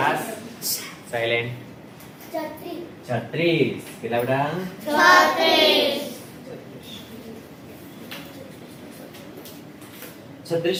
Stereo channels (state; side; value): identical; both; correlation 1.00